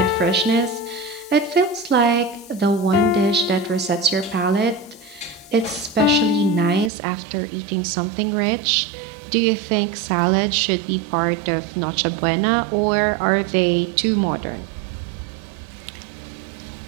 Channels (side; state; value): left; drops out; at 6.9 s